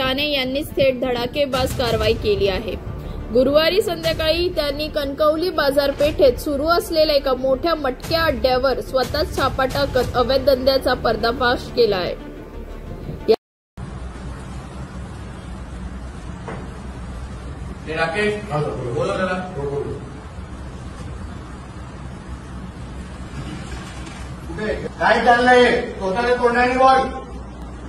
यांनी थेट धडाकेबाज कारवाई केली आहे। गुरुवारी संध्याकाळी त्यांनी कणकवली बाजारपेठेत सुरू असलेल्या एका मोठ्या मटक्या अड्ड्यावर स्वतःच छापा टाकत अवैध धंद्याचा पर्दाफाश केला आहे। काय चाललंय स्वतःला तोंडाने बोल।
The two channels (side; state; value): both; identical; correlation 1.00